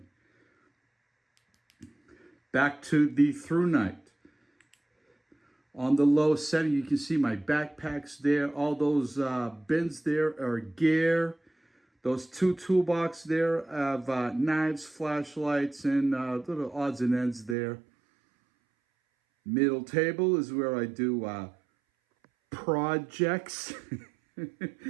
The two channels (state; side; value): drops out; left; at 17.6 s